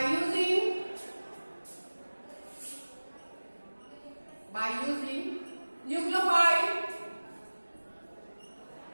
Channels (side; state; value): both; inverted; correlation -1.00